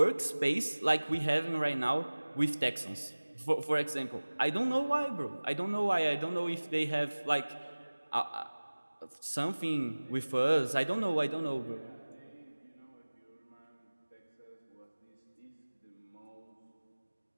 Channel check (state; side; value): inverted; both; correlation -1.00